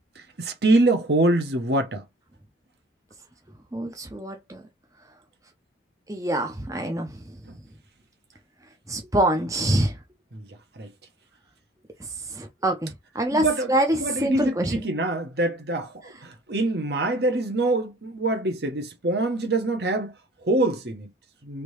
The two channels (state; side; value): normal; both; correlation 0.50